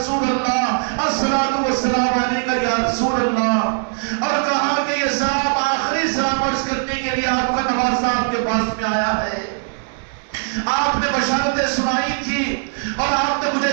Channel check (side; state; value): left; silent; digital silence